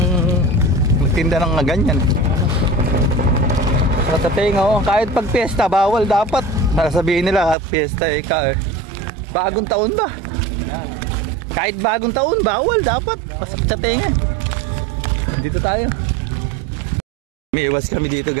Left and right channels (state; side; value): drops out; left; at 7.6 s